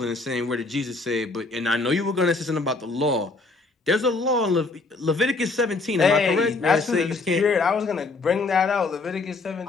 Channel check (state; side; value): quieter; right; 3.7 dB